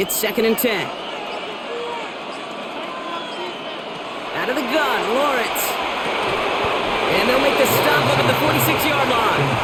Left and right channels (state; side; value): identical; both; correlation 1.00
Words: 2nd and 10. Out of the gun, Lawrence. And they'll make the stop up at the 46-yard line.